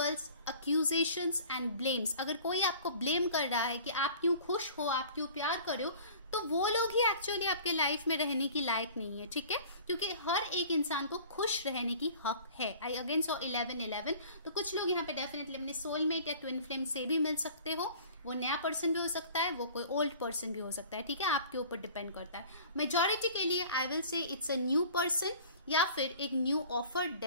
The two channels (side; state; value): both; inverted; correlation -0.46